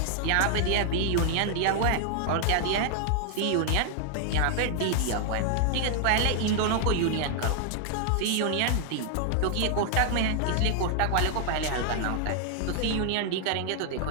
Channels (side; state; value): both; different; correlation 0.00